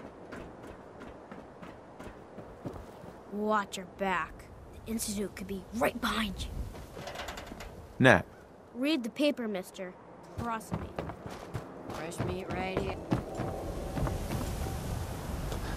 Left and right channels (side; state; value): both; identical; correlation 1.00